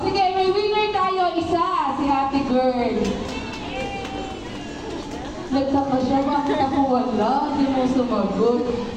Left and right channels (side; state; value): both; identical; correlation 1.00